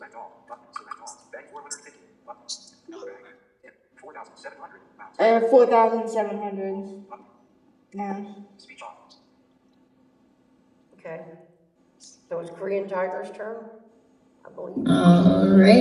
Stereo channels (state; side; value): identical; both; correlation 1.00